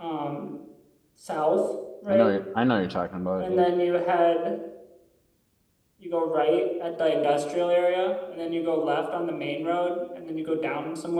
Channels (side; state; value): both; identical; correlation 1.00